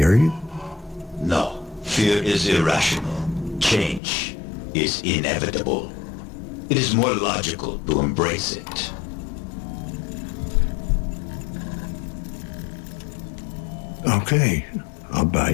No. Fear is irrational. Change is inevitable. It is more logical to embrace it. Okay, I'll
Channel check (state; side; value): drops out; right; at 4.0 s